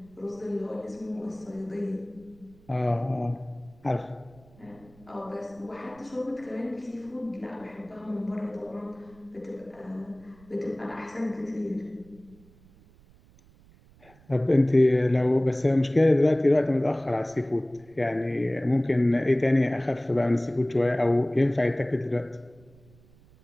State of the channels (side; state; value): right; noise; rumble, 27 dB below the sound